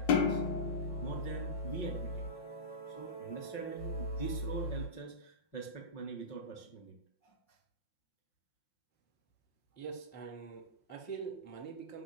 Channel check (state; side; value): late; right; 5.6 ms